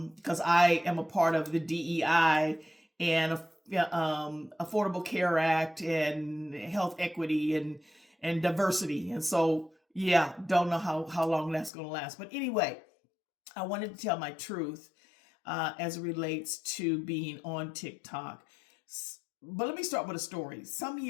I am a part of the DEI and Affordable Care Act and health equity and diversity. And so, yeah, don't know how long that's going to last. But anyway, I wanted to tell my truth as it relates to being on TikTok. But let me start with a story. Some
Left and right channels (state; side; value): drops out; right; at 11.7 s